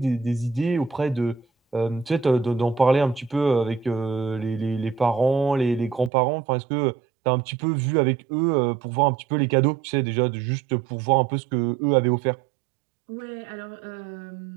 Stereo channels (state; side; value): drops out; left; at 6.1 s